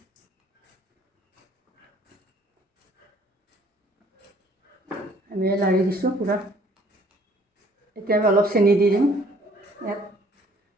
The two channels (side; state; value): both; normal; correlation 0.59